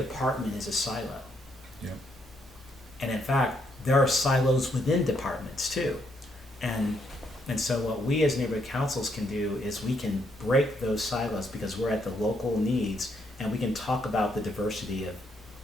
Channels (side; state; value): both; normal; correlation 0.74